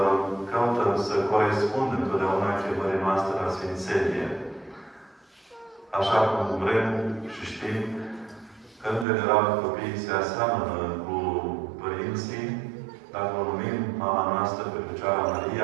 căutăm să corespundem întotdeauna chemării noastre la Sfințenie. Așa cum vrem și știm că, în general, copiii se aseamănă cu părinții, dacă o numim mama noastră pe Fecioara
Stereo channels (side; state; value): left; drops out; at 9.1 s